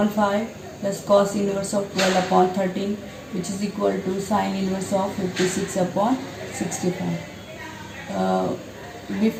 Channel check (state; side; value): identical; both; correlation 1.00